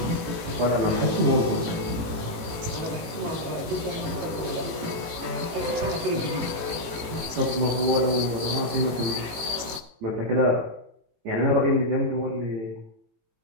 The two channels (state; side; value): late; left; 18 ms